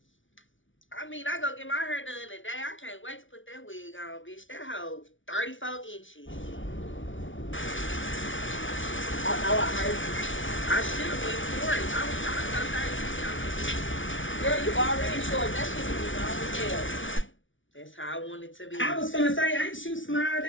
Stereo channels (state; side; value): late; right; 0.56 ms